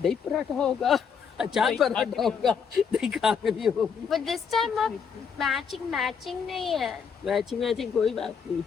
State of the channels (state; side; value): quieter; right; 6.5 dB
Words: दही पराठा होगा, अचार पराठा होगा, दही खाकरी होगी। but this time अब मैचिंग नहीं है। मैचिंग कोई बात नहीं।